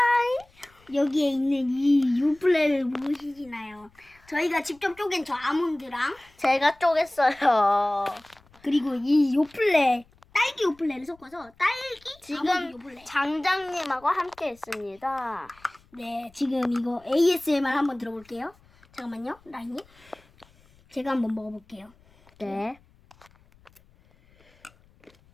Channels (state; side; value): noise; left; rumble, 29 dB below the sound